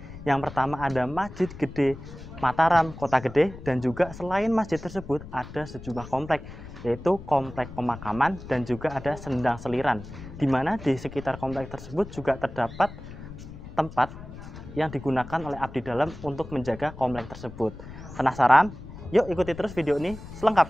Yang pertama ada Masjid Gede Mataram, Kota Gede, dan juga selain masjid tersebut ada sejumlah komplek, yaitu komplek pemakaman dan juga ada sendang seliran, di mana di sekitar komplek tersebut juga terdapat tempat yang digunakan oleh abdi dalam untuk menjaga komplek tersebut. Penasaran? Yuk ikuti terus video ini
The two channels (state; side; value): noise; left; rumble, 14 dB below the sound